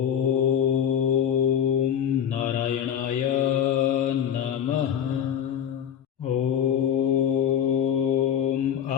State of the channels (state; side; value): quieter; right; 9.0 dB